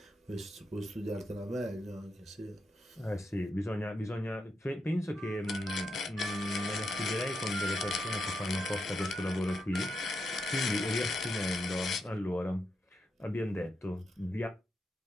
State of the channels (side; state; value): both; normal; correlation 0.84